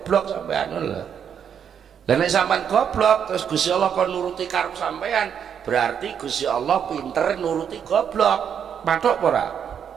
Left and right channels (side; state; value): left; quieter; 8.1 dB